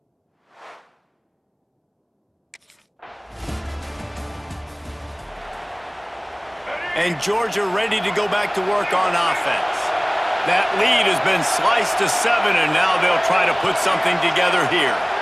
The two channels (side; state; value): both; identical; correlation 1.00